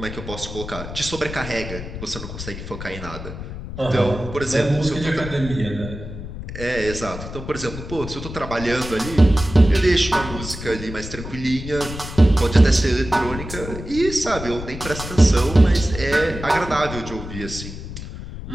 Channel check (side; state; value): left; noise; rumble, 10 dB below the sound